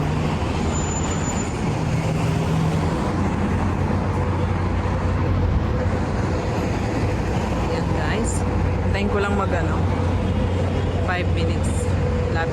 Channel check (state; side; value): identical; both; correlation 1.00